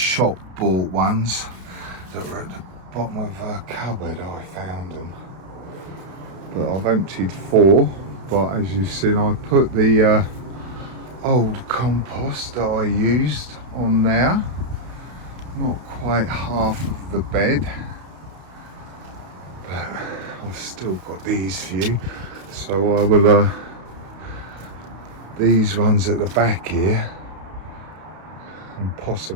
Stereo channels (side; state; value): left; late; 32 ms